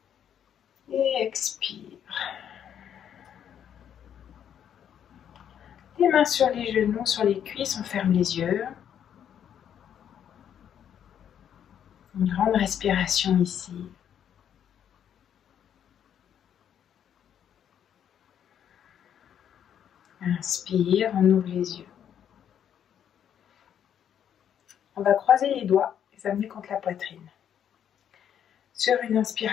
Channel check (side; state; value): right; quieter; 9.2 dB